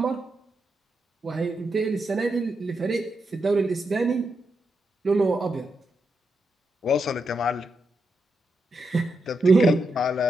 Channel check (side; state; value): both; normal; correlation 0.84